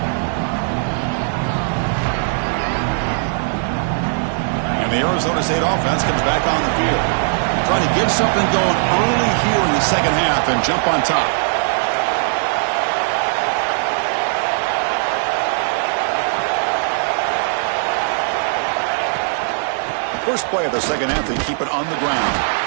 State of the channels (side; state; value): left; silent; digital silence